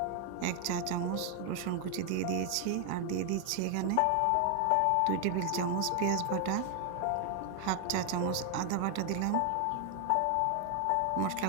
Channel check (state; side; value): different; both; correlation 0.00